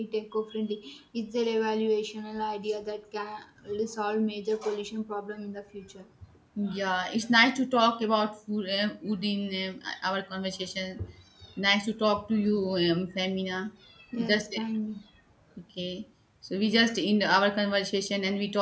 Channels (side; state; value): both; identical; correlation 1.00